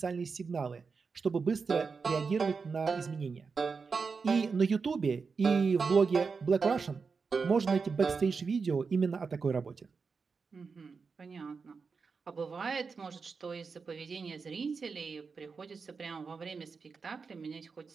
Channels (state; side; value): quieter; left; 5.0 dB